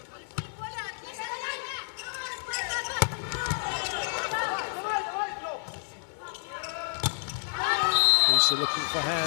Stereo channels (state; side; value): silent; right; 58 dB below the other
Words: Also looking for